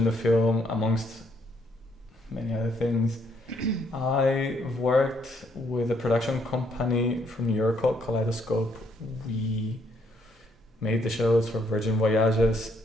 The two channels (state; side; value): normal; both; correlation 0.70